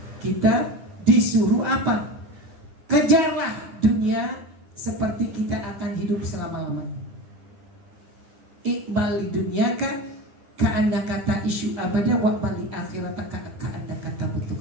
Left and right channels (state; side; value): late; left; 9.8 ms